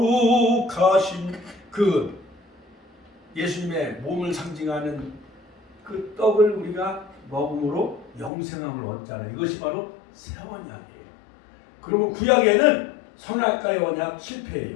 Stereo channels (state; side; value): drops out; right; at 8.3 s